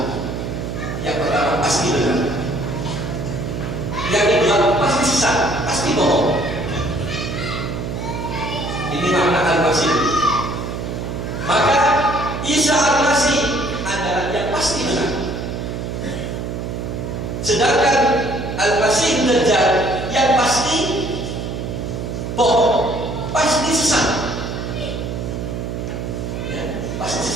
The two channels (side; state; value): right; noise; hum, 5 dB below the sound